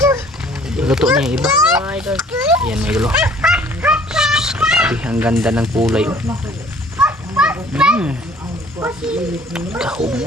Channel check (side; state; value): both; normal; correlation 0.55